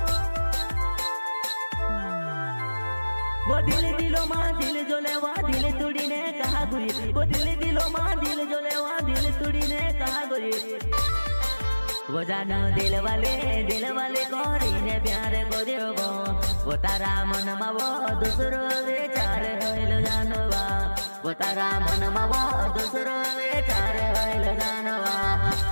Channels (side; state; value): both; inverted; correlation -1.00